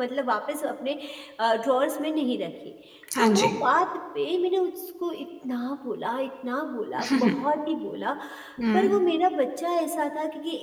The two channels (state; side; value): identical; both; correlation 1.00